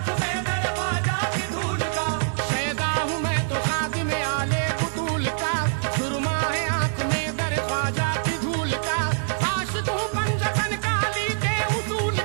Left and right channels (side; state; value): left; silent; digital silence